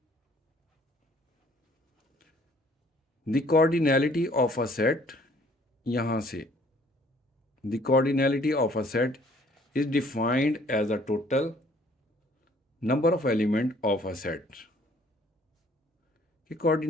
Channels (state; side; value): normal; both; correlation 0.59